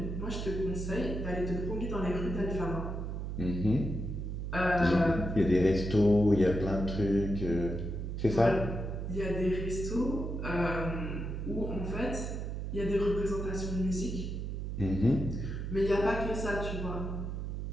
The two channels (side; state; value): right; noise; hum, 4 dB below the sound